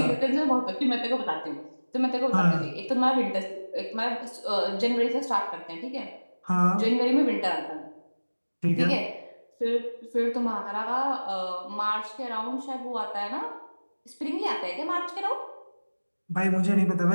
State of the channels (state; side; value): inverted; both; correlation -1.00